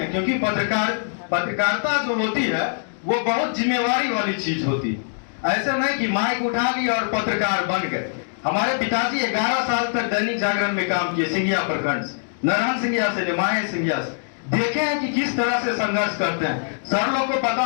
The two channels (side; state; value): right; silent; digital silence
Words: क्योंकि पत्रकारिता जो होती है वो बहुत जिम्मेवारी वाली चीज होती है। ऐसे नहीं कि माइक उठा लिया और पत्रकार बन गए। हमारे पिताजी 11 साल तक दैनिक जागरण में काम किए, सिंघिया प्रखंड से, नारायण सिंघिया से, निमाय सिंघिया से। देखे हैं कि किस तरह से संघर्ष करते हैं। सर लोग को पता